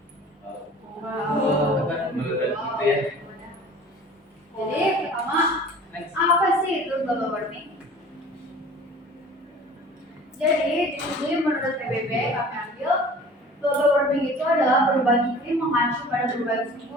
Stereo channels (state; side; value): normal; both; correlation 0.44